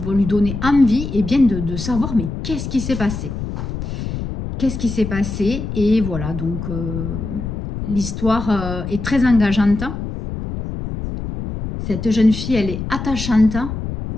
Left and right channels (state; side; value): noise; left; rumble, 6 dB below the sound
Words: lui donner envie et bien de savoir, mais qu'est-ce qui s'est passé? Qu'est-ce qui s'est passé? Et voilà, donc l'histoire est très engageante. Cette jeune fille, elle est attachante,